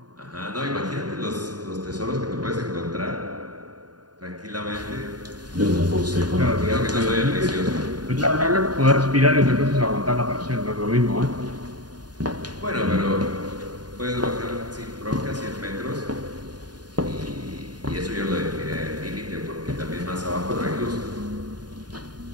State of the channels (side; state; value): left; late; 0.70 ms